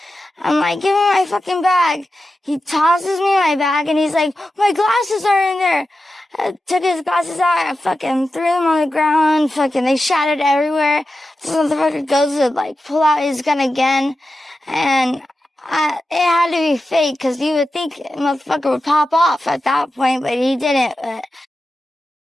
I'm like, give me my fucking bag. He tosses me my bag, and he's like, my glasses are in there. I took his glasses out. I fucking threw them on the ground. They shattered everywhere. This motherfucker goes to, like, pull out his gun again. And it had to be fake, because you would think a motherfucker would pop off at that point, but he didn't.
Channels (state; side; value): normal; both; correlation 0.92